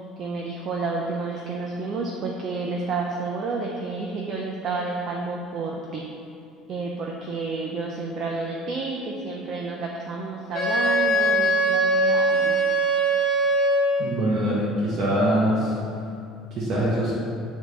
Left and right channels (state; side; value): normal; both; correlation 0.40